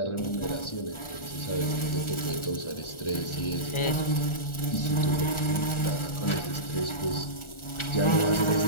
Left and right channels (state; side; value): late; right; 1.4 ms